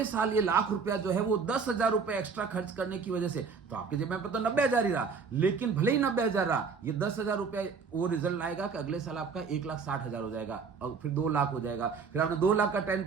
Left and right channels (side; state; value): left; quieter; 5.4 dB